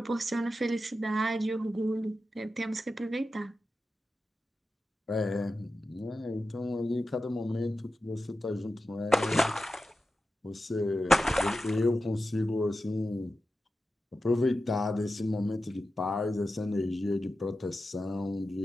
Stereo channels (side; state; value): both; normal; correlation 0.92